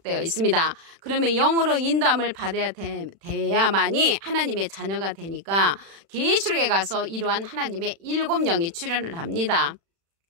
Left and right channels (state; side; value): late; left; 36 ms